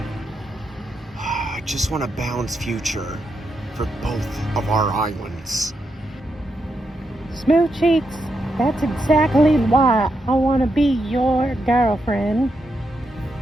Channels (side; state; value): both; normal; correlation 0.83